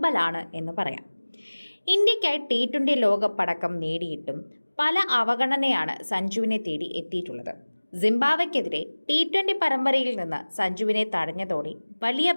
എന്ന് പറയാം. ഇന്ത്യക്കായി T20 ലോകപ്പടക്കം നേടിയിട്ടും പല അവഗണനയാണ് സഞ്ജുവിനെ തേടി എത്തിയിട്ടുള്ളത്. സിംബാബ്വെക്കെതിരെ T20 പരമ്പരയിൽ നിന്ന് സഞ്ജുവിനെ തടഞ്ഞതോടെ വലിയ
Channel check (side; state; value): both; inverted; correlation -1.00